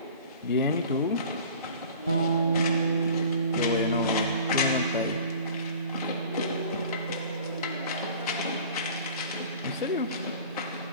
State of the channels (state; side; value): inverted; both; correlation -0.44